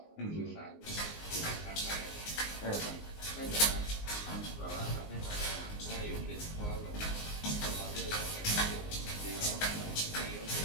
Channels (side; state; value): right; late; 19 ms